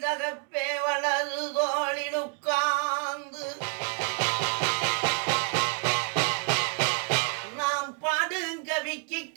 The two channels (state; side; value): quieter; left; 37.2 dB